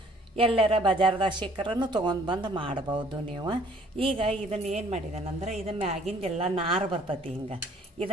ಎಲ್ಲರ ಬಜಾರ್ದಾಗ ಸಿಕ್ಕರನ್ನು ತೊಗೊಂಡು ಬಂದು ಮಾಡ್ಬೋದು ನೀವು. ಈಗ ಇದನ್ನು ಏನು ಮಾಡಿದಾನಂದ್ರೆ, ಇದು ಮ್ಯಾಗಿಂದೆಲ್ಲ ನಾರು ಬರ್ತೈತಿ. ಹಿಂಗೆ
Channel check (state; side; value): normal; both; correlation 0.57